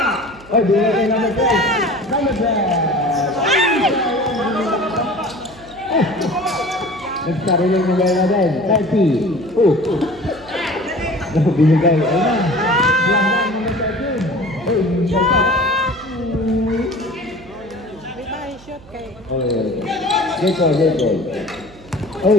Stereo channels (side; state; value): right; noise; hum, 22 dB below the sound